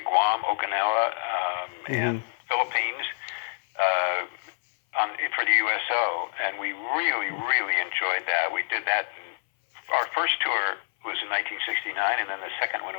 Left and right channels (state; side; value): silent; right; 57 dB below the other